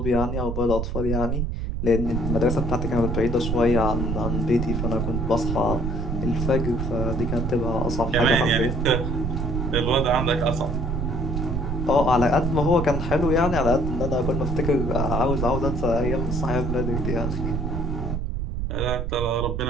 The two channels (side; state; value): right; noise; rumble, 2 dB below the sound